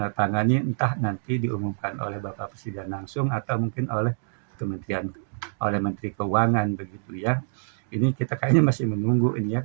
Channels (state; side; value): silent; left; digital silence